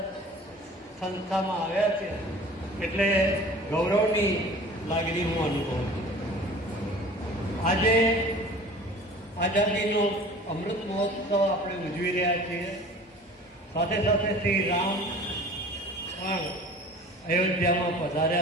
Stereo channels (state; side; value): normal; both; correlation 0.44